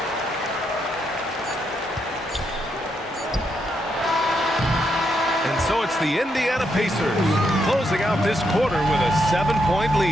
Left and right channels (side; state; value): both; normal; correlation 0.79